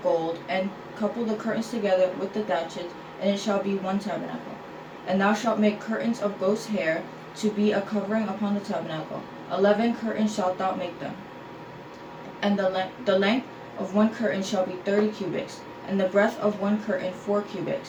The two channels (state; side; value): identical; both; correlation 1.00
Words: gold, and couple the curtains together with the thatchets, and it shall be one tabernacle. And thou shalt make curtains of goat's hair to be a covering upon the tabernacle. 11 curtains shalt thou make them. And the length of one curtain shall be 30 cubits, and the breadth of one curtain 4